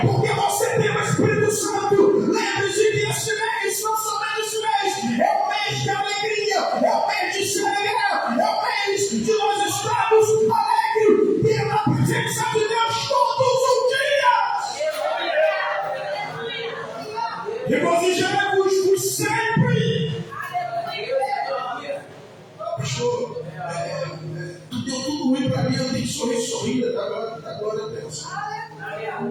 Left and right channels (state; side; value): identical; both; correlation 1.00